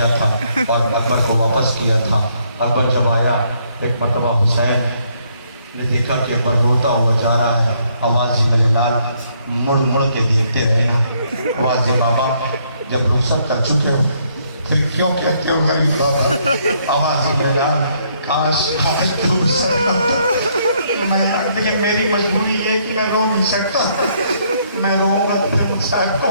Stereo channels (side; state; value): both; inverted; correlation -0.70